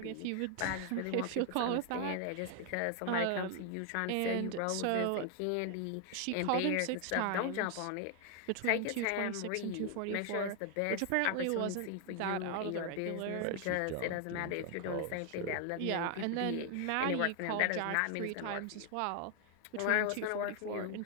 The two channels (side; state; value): both; different; correlation 0.00